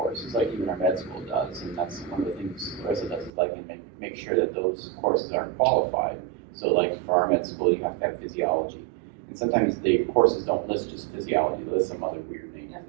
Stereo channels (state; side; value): drops out; left; at 3.3 s